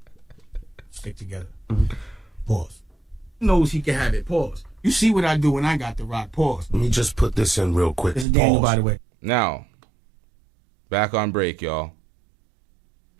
Stick together. Pause. Knows he can have it. Pause. You see what I do when I got the rock. Pause. Let me just put this in real quick. This is Daniel, by the way. Now, back on break, y'all.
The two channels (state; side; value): drops out; left; at 8.2 s